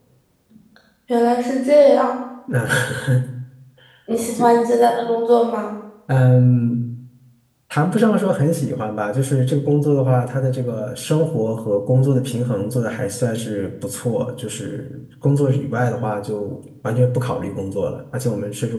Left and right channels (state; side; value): identical; both; correlation 1.00